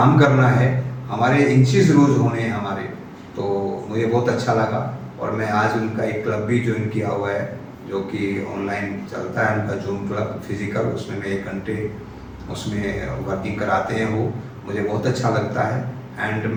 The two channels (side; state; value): both; identical; correlation 1.00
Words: करना है, हमारे इंचेस लूज होने हैं हमारे, तो मुझे बहुत अच्छा लगा। और मैं आज उनका एक क्लब भी ज्वाइन किया हुआ है जो कि ऑनलाइन चलता है, उनका जूम क्लब फिजिकल, उसमें मैं 1 घंटे उसमें वर्किंग कराते हैं वो, मुझे बहुत अच्छा लगता है। एंड